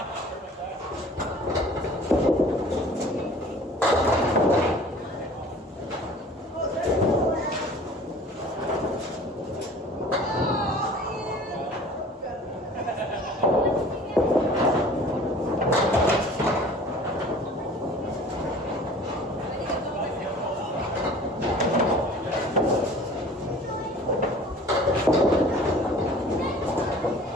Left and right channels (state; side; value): normal; both; correlation 0.46